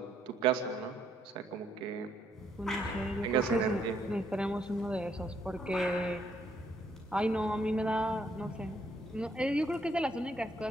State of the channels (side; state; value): both; normal; correlation 0.71